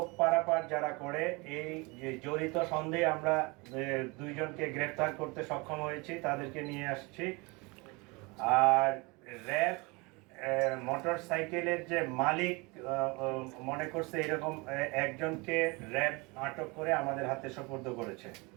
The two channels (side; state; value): left; quieter; 26.9 dB